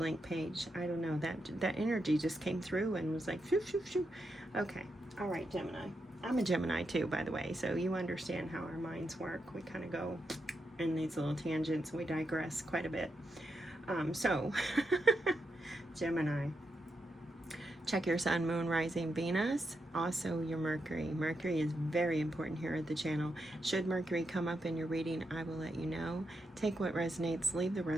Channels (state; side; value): normal; both; correlation 0.84